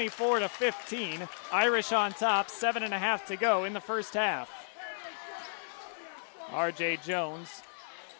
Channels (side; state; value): right; silent; digital silence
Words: Irish on top, 7.5 to go in the first half. R.J. Jones